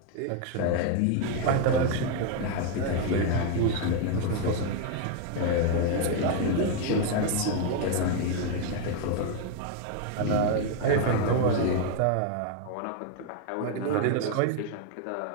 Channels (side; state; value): both; different; correlation 0.01